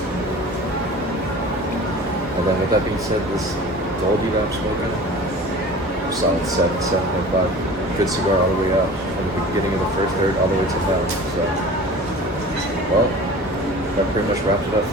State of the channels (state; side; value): normal; both; correlation 0.40